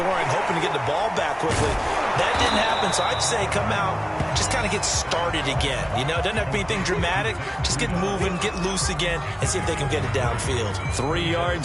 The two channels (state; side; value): identical; both; correlation 1.00